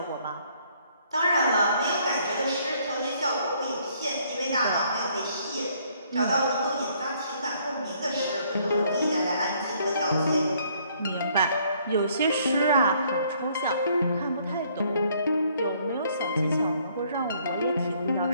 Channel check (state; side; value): inverted; both; correlation -0.65